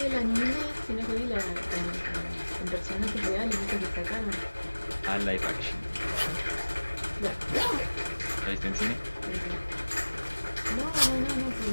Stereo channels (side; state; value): both; inverted; correlation -1.00